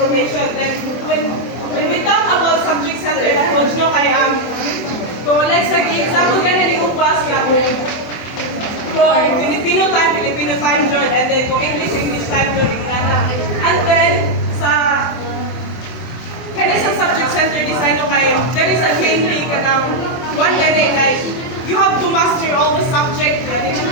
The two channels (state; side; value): late; right; 24 ms